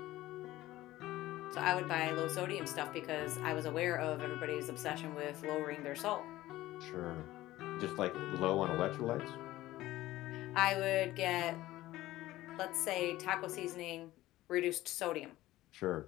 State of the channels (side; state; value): right; quieter; 16.3 dB